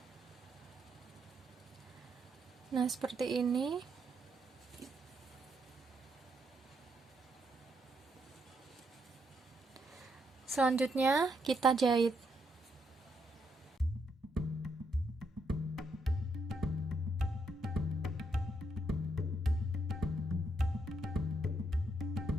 Nah, seperti ini. Selanjutnya kita jahit.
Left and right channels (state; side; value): normal; both; correlation 0.77